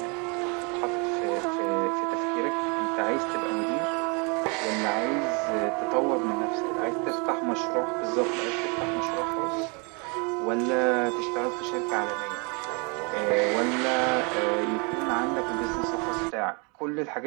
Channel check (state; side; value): quieter; left; 32.9 dB